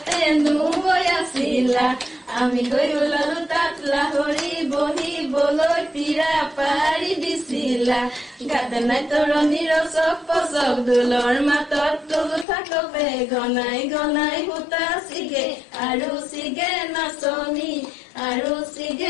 নৈ আছিলা আমি গৈ ওলালো তাত লাহৰি বহিবলৈ পিৰা পাৰি দিছিলা গাতে নাই তৰণিৰ চক পচক দোলৰ মাতত তোলো থাকবে গনাই গনাই সূতা চিগে আৰু চিগে নাচনি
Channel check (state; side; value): drops out; right; at 12.5 s